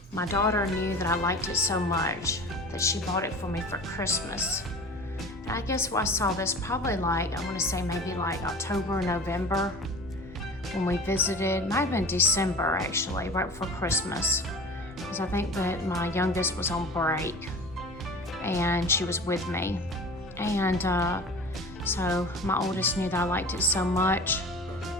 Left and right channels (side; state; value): both; normal; correlation 0.37